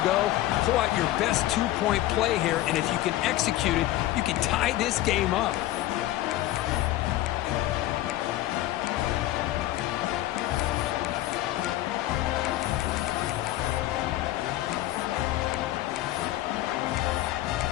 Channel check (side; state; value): right; quieter; 15.4 dB